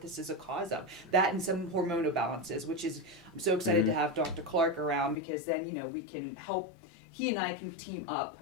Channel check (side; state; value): right; drops out; at 5.2 s